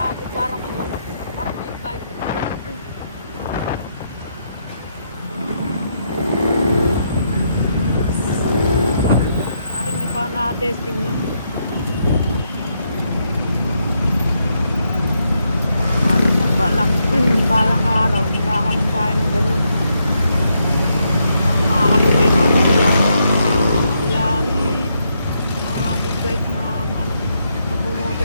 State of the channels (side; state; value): both; inverted; correlation -0.79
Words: Parang agad, parang big bike. Parang hindi pa na-testing na. Balang araw, nagkakaroon tayo ng ganun. Ang makakatubay natin sila rin, mga big bike na mga